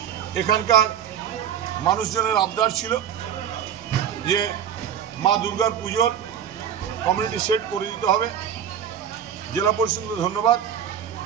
এখানকার মানুষজনের আবদার ছিল যে মা দুর্গার পুজোর কমিউনিটি সেট করে দিতে হবে। জেলা পরিষদকে ধন্যবাদ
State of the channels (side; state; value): left; quieter; 8.9 dB